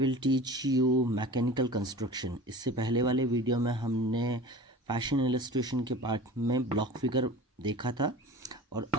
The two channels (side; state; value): both; normal; correlation 0.37